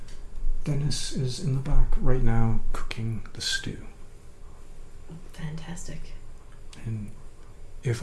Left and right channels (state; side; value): identical; both; correlation 1.00